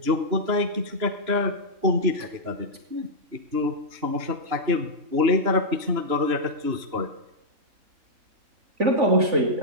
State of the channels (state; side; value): late; left; 3.0 ms